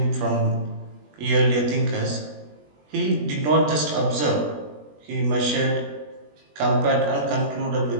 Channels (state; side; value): late; left; 20 ms